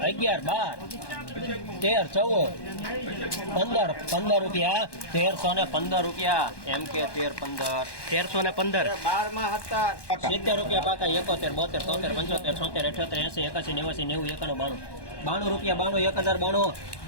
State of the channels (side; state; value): right; late; 1.1 ms